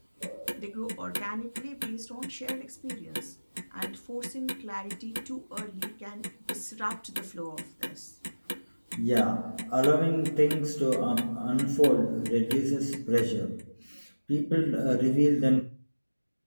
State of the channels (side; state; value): both; inverted; correlation -1.00